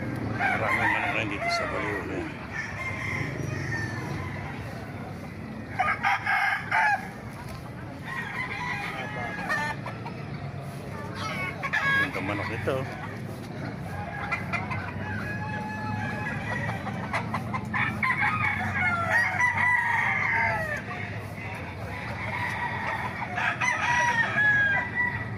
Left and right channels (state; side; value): identical; both; correlation 1.00